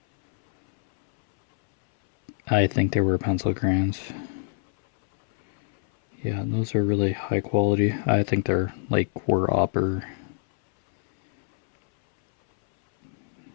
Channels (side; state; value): right; silent; 62 dB below the other